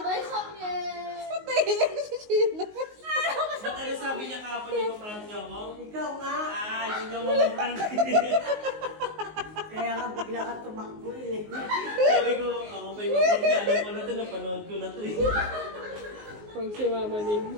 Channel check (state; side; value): late; left; 19 ms